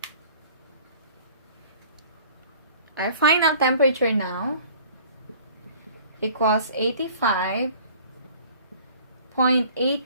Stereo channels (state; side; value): inverted; both; correlation -0.51